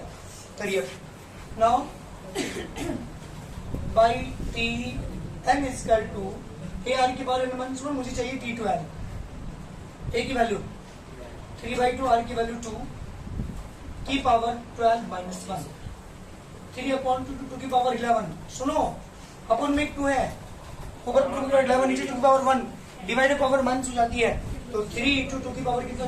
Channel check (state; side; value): identical; both; correlation 1.00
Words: करिए now by T N equal to A R की पावर n माइनस 1, मुझे चाहिए T12, a की वैल्यू 3/2, आर की वैल्यू 2 की पावर 12 माइनस 1, 3/2 की पावर 11, सुनो अपन में 2 है, ऊपर 2 की पावर 11 नीचे 2 की पावर 1, डिवाइडेड पावर माइनस हो जाती है, तो 3 इंटू 2 की पावर कितना